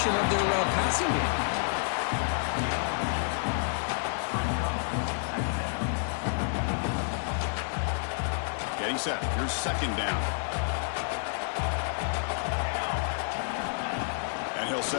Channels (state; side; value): silent; right; digital silence